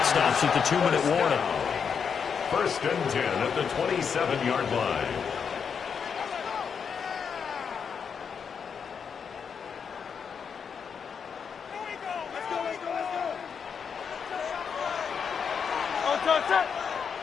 stops at the 2-minute warning. First and 10 at the 27-yard line.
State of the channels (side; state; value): right; quieter; 6.6 dB